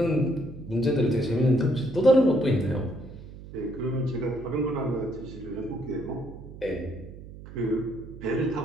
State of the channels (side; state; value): right; noise; hum, 15 dB below the sound